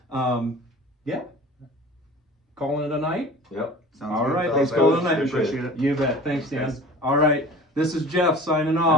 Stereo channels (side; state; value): both; normal; correlation 0.41